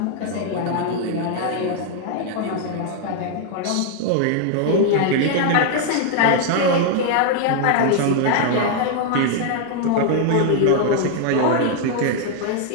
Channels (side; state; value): both; different; correlation 0.00